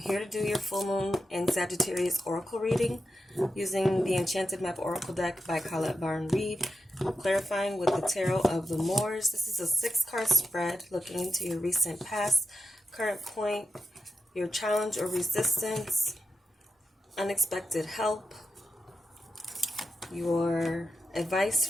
to do your full moon and Sagittarius oracle reading using the Enchanted Map Oracle deck by Colette Barn Reed, clarifying with the Tarot of the Moors. This is a 6-card spread looking into your recent past, current point, your challenge or resistance, unexpected help, your advice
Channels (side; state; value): both; normal; correlation 0.89